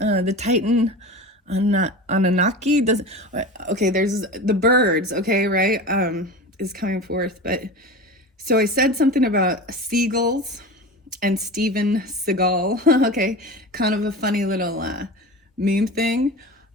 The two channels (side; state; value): both; normal; correlation 0.30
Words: Titan Anunnaki doesn't, okay, there's the birds, okay, right, is coming forth. But so I said something about seagulls and Steven Seagal, okay, kind of a funny little meme thing.